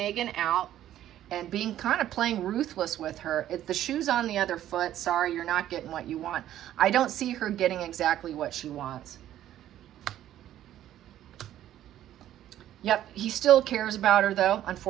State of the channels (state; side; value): quieter; left; 12.2 dB